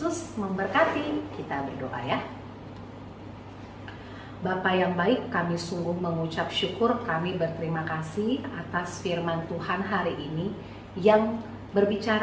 memberkati. Kita berdoa ya. Bapa yang baik, kami sungguh mengucap syukur, kami berterima kasih atas firman Tuhan hari ini yang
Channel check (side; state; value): both; identical; correlation 1.00